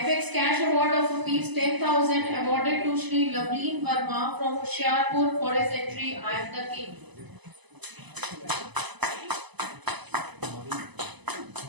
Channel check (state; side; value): late; left; 1.0 ms